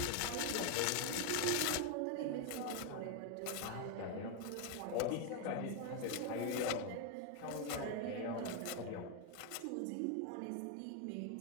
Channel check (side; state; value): both; different; correlation 0.01